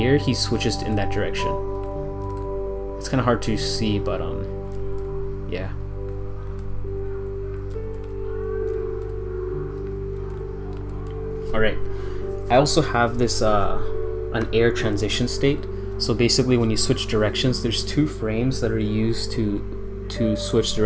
air, he switches in that direction. It's kind of hard to see, but yeah. All right. I also have this an air transition state. So basically, when you switch directions, there's two frames that are used to switch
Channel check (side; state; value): both; identical; correlation 1.00